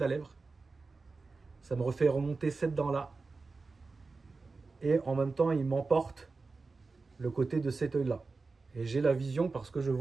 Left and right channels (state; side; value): quieter; left; 4.0 dB